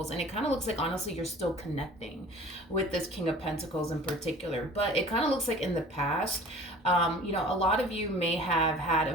And it kind of looks like, honestly, you're still connecting with this King of Pentacles in particular. But it kind of looks like in the past, a lot of you may have had a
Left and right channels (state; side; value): normal; both; correlation 0.45